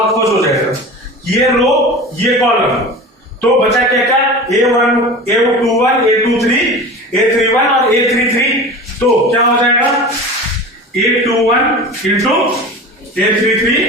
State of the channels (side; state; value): both; normal; correlation 0.34